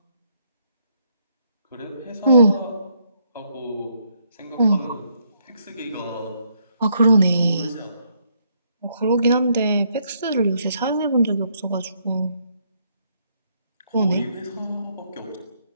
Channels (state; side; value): inverted; both; correlation -0.73